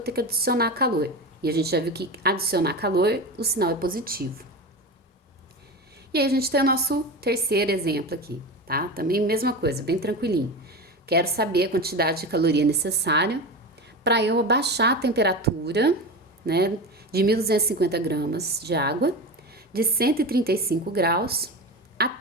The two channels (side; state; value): both; normal; correlation 0.25